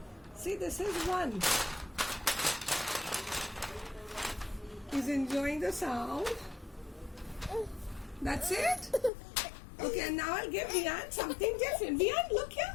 See, this is 1. He's enjoying the sound. That's it? Okay, and now I'll give Vian something different. Vian, look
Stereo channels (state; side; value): drops out; right; at 9.1 s